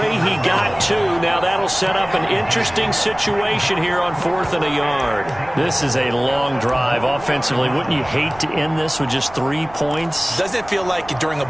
He got 2. Now that'll set up an interesting situation here on 4th and a yard. This is a long drive offensively. Wouldn't you hate to end this with just 3 points? Doesn't it feel like during a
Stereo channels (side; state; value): right; noise; rumble, 19 dB below the sound